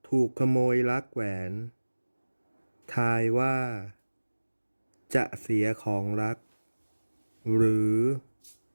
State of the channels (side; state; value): both; inverted; correlation -1.00